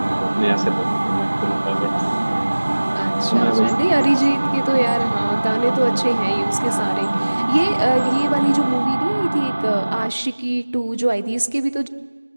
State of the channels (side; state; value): both; inverted; correlation -1.00